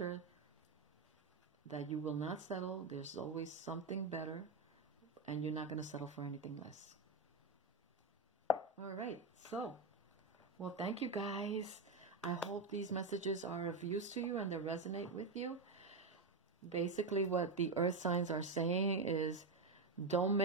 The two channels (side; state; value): left; quieter; 3.8 dB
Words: that you will not settle. There's always something better, and you're not going to settle for anything less. All right. So, well, thank you guys. I hope these messages are of use to you and they resonate with you. Basically, what the earth signs are saying is don't